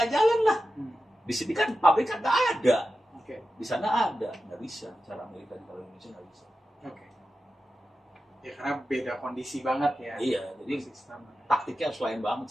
jalan lah. Di sini kan pabrik kan nggak ada, di sana ada, nggak bisa. Cara Amerika di Indonesia nggak bisa. Ya karena beda kondisi banget ya. Iya, jadi sistem taktiknya harus lain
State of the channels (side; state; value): both; normal; correlation 0.92